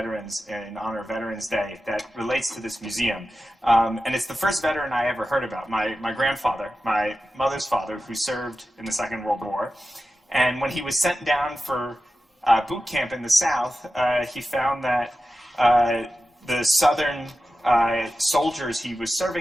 in honor of Veterans Day that relates to this museum. And it's the first veteran I ever heard about, my grandfather, my mother's father, who served in the Second World War. And when he was sent down for boot camp in the South, he found that the Southern soldiers he was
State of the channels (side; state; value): both; normal; correlation 0.93